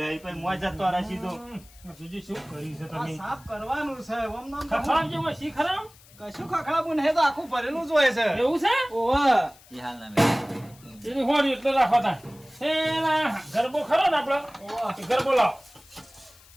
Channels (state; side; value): noise; left; hiss, 25 dB below the sound